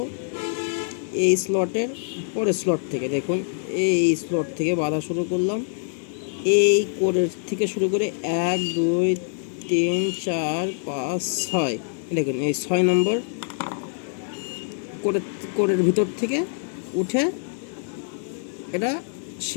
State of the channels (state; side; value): silent; right; 60 dB below the other